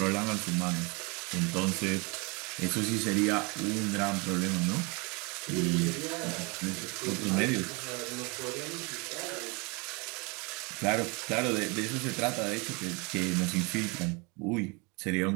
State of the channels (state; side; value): quieter; left; 29.7 dB